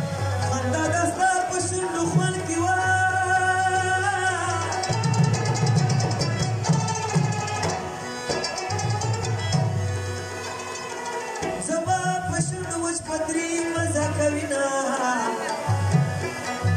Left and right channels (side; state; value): both; identical; correlation 1.00